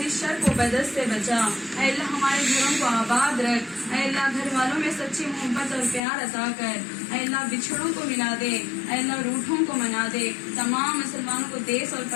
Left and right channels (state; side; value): drops out; right; at 6.0 s